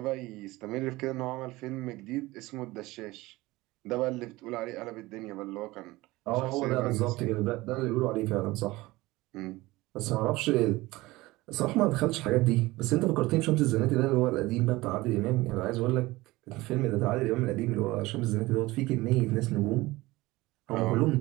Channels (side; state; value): left; quieter; 19.8 dB